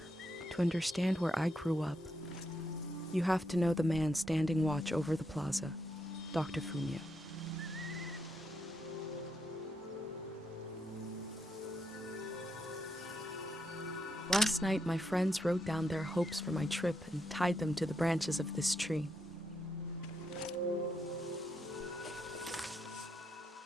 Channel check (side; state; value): both; normal; correlation 0.81